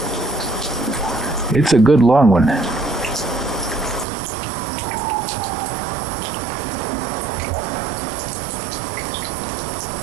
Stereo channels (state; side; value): drops out; left; at 4.0 s